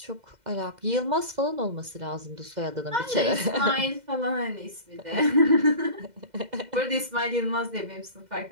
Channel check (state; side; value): late; left; 2.0 ms